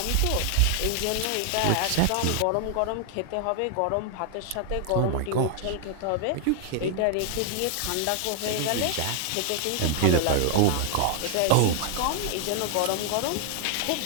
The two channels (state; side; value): different; both; correlation 0.00